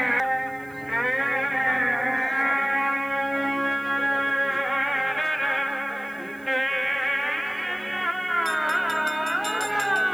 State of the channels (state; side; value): noise; right; hiss, 28 dB below the sound